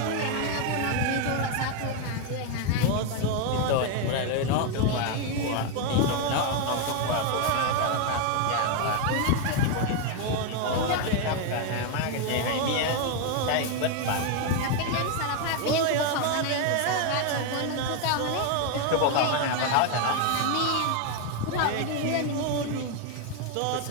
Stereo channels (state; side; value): different; both; correlation 0.01